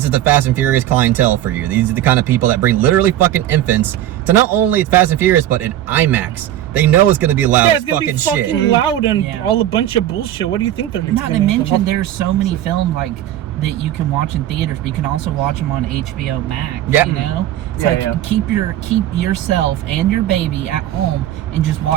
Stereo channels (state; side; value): quieter; left; 12.5 dB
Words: the Fast and Furious clientele for you. These are the kind of people that bring literally fucking infants to not only Fast and Furious but in IMAX. They know it's gonna be loud yeah, as it's gonna fucking be fucking shit. loud and Yeah. all a bunch of bullshit. What do you think they're Not to gonna mention, there's so many films like that you can watch in theaters, but you can also watch them on HBO Max. Yeah. You know, it's Yeah, like yeah. keep yourself and your baby at home and just